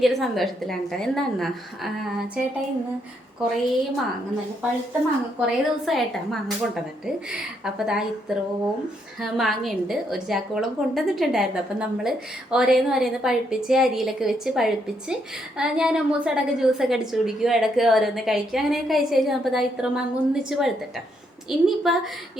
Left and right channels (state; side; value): normal; both; correlation 0.75